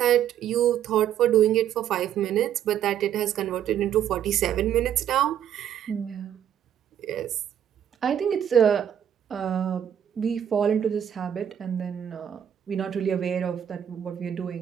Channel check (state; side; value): quieter; left; 9.7 dB